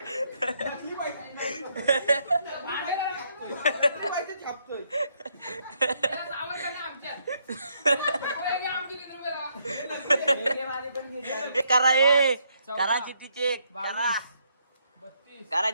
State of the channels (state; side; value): inverted; both; correlation -0.73